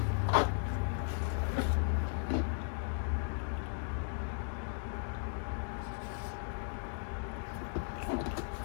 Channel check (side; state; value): right; silent; digital silence